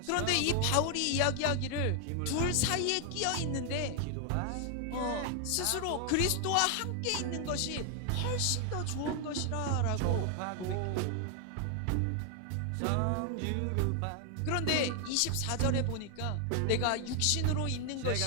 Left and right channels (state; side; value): different; both; correlation 0.00